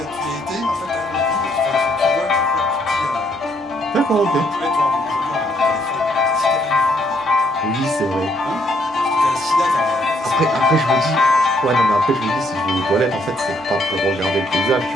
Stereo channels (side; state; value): both; normal; correlation 0.69